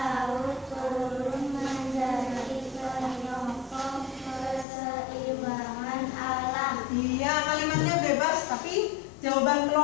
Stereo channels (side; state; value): right; drops out; at 4.7 s